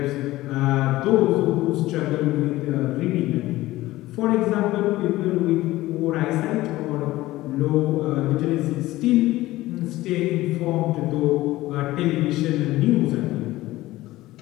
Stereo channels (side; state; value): right; quieter; 17.2 dB